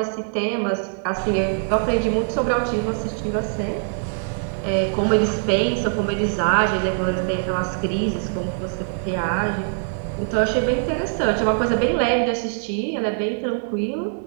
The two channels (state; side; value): silent; left; digital silence